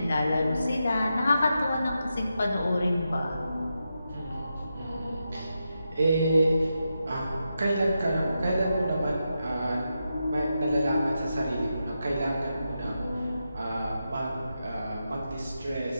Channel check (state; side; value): inverted; both; correlation -0.87